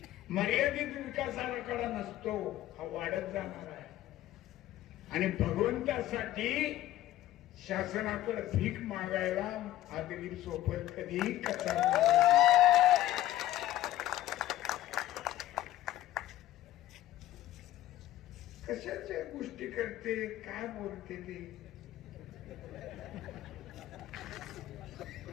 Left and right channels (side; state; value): right; quieter; 14.4 dB